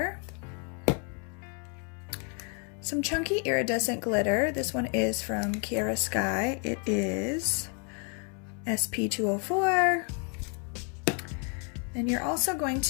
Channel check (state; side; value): quieter; right; 38.7 dB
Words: some chunky iridescent glitter. This one is from KIARA Sky. It is SP204. Then you're also going